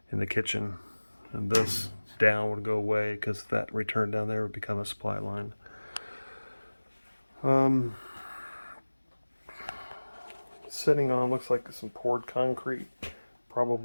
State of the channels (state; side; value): inverted; both; correlation -1.00